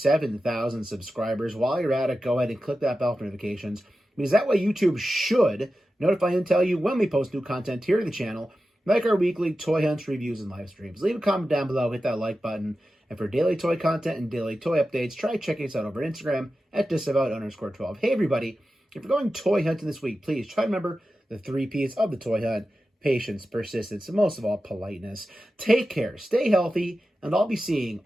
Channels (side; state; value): both; normal; correlation 0.93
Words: subscribers. While you're at it, go ahead and click that bell for notifications, because that way YouTube should notify and tell you when we post new content here to the channel, like our weekly toy hunts, reviews, and live streams. Leave a comment down below, hit that like button, and for daily toy content and daily toy updates, try checking us out over Instagram at Disavowed_12. Hey everybody, if you're going toy hunting this week, please try to remember the 3 P's of the toy hunt: patience, persistence, and most of all, politeness. Take care, stay healthy, and I'll be seeing